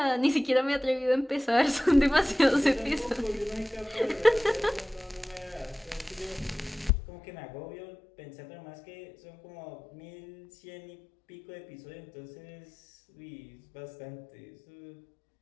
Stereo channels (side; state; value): right; drops out; at 6.9 s